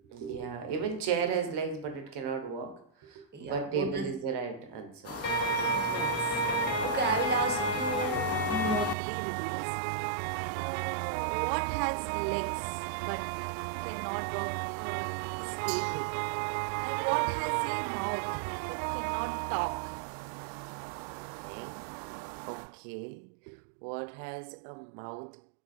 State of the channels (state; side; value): drops out; left; at 9.0 s